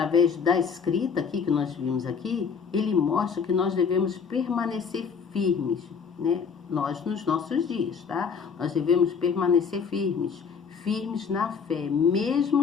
da escrita aqui que nós vimos aqui, ele mostra que nós devemos permanecer firmes, né? Nós nos nossos dias, tá? Nós devemos permanecer firmes na fé,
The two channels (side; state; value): right; quieter; 6.1 dB